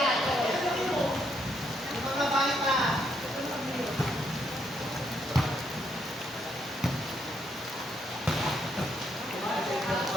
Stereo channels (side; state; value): both; normal; correlation 0.75